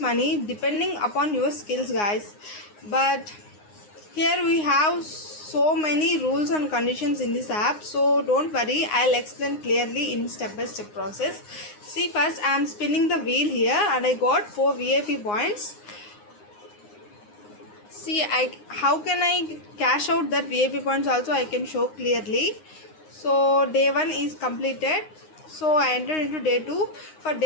depending upon your skills, guys. But here we have so many rules and conditions in this app, so don't worry, I'll explain clearly in step by step process. See, first I am spinning the wheel here and I got 4 VIP points. See, how can I cash out that VIP points also I can show clearly. So day 1 is completed, so I entered into day 2. For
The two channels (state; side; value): late; right; 9.7 ms